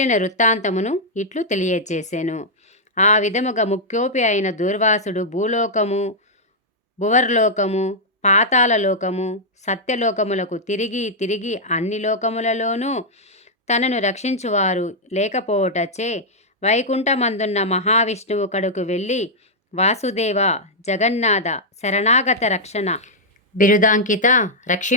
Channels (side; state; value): both; normal; correlation -0.05